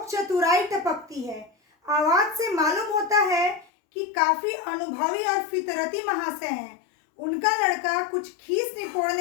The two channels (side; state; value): right; drops out; at 3.7 s